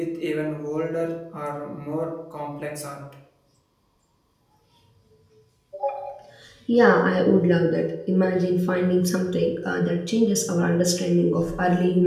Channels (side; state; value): both; identical; correlation 1.00